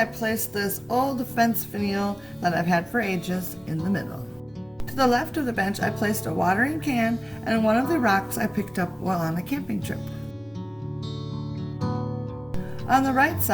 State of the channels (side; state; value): right; noise; hum, 29 dB below the sound